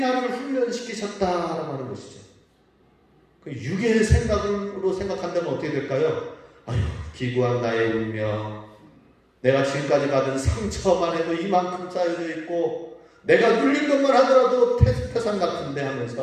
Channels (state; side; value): identical; both; correlation 1.00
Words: 훈련시키셨다라고 하는 것이죠. 그 육의 생각으로 생각한다면 어떻게 될까요? 아유, 기구한 나의 운명, 내가 지금까지 받은 상처만 해도 이만큼 쌓여져 있고 내가 눌린 것만 하더라도 태산 같은데